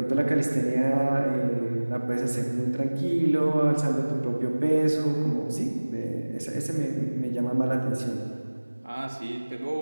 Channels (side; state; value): both; inverted; correlation -1.00